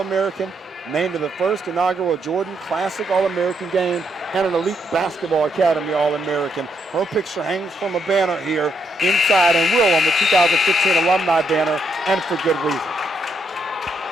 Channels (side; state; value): both; normal; correlation 0.77